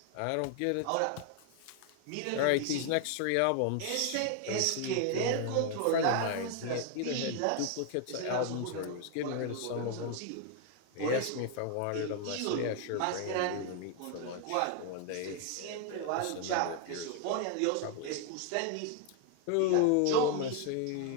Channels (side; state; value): both; different; correlation 0.00